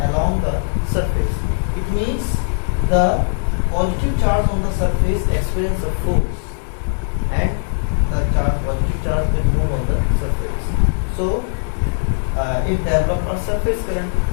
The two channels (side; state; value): right; silent; 66 dB below the other